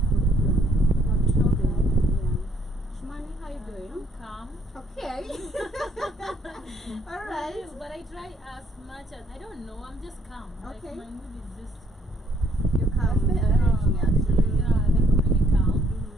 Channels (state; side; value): normal; both; correlation 0.65